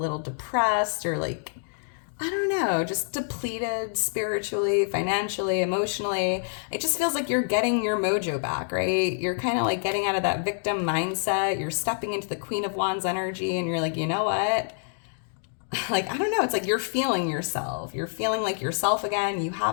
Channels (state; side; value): silent; right; digital silence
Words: depressed or like, I don't know, just depleted spiritually, financially, emotionally, it just feels like you're getting your mojo back, right? You're kind of like getting out of that victim mindset. You're stepping into the Queen of Wands energy and you're like, you know what? Like, I don't know, it's like you're feeling yourself. You're feeling like yourself again. You